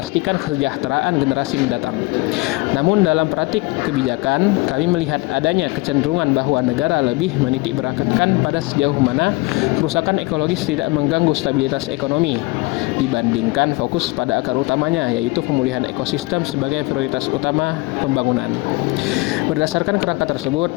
kesejahteraan generasi mendatang. Namun dalam praktik kebijakan, kami melihat adanya kecenderungan bahwa negara lebih menitik beratkan pada sejauh mana kerusakan ekologis tidak mengganggu stabilitas ekonomi dibandingkan fokus pada akar utamanya, yaitu pemulihan ekosistem sebagai prioritas utama pembangunan. Berdasarkan kerangka tersebut,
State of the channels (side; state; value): right; quieter; 23.1 dB